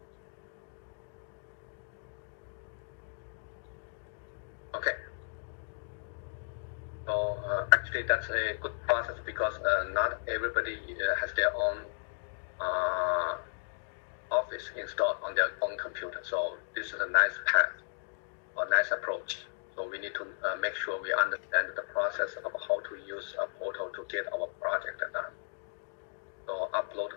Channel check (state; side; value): silent; right; digital silence